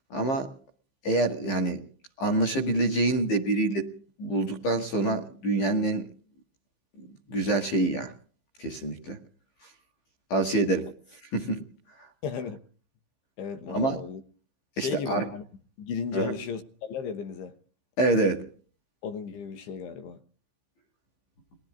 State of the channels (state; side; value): late; right; 15 ms